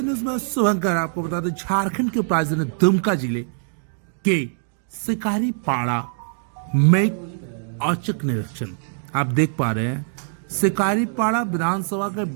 न्यूज में शुभंकर। आपको बता दें, झारखंड के राजधानी दुमका जिले के शिकारी पाड़ा में औचक निरीक्षण आप देख पा रहे हैं। शिकारी पाड़ा विधानसभा के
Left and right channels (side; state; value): left; silent; digital silence